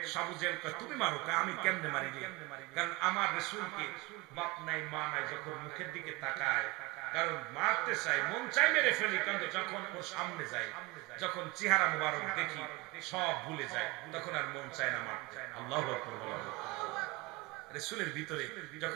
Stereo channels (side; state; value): left; quieter; 22.7 dB